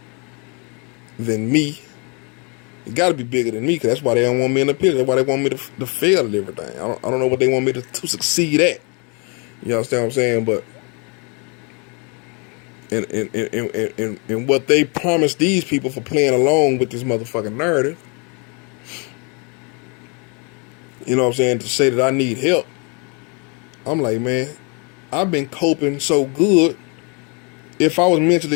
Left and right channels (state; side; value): quieter; right; 33.4 dB